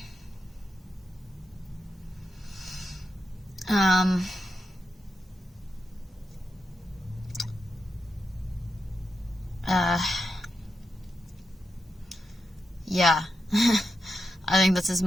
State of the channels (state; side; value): normal; both; correlation 0.87